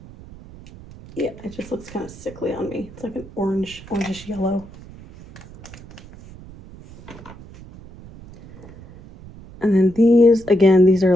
Yeah, it just looks kind of sickly on me. It's like an orangish yellow. And then these, again, these are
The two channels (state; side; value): noise; right; rumble, 19 dB below the sound